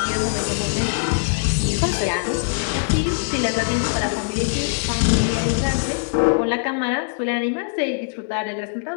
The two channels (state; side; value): silent; right; digital silence